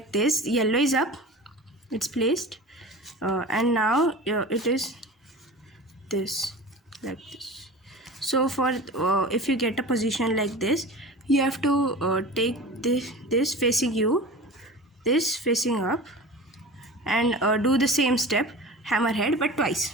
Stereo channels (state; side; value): normal; both; correlation 0.35